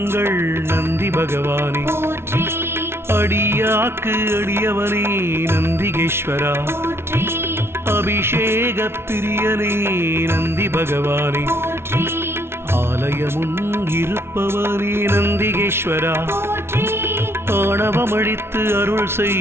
நந்தி பகவானே, போற்றி அடியாக்கு அடியவனே நந்திகேஸ்வரா, போற்றி அபிஷேக பிரியனே நந்தி பகவானே, போற்றி ஆலயமுன் இருப்பவனே நந்திகேஸ்வரா, போற்றி ஆணவமழித்து அருள்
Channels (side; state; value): left; late; 0.12 ms